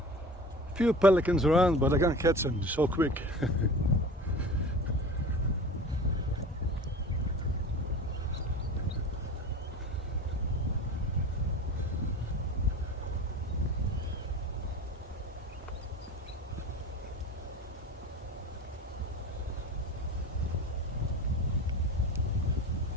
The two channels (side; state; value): both; normal; correlation 0.36